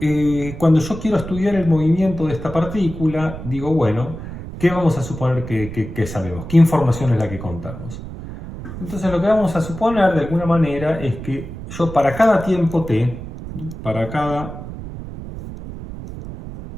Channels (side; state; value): right; noise; rumble, 11 dB below the sound